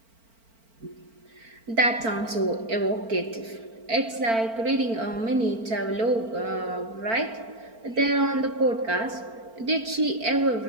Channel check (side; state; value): left; late; 4.4 ms